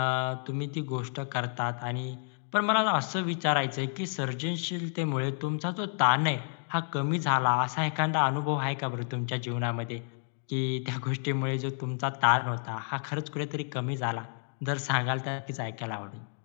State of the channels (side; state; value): right; silent; 58 dB below the other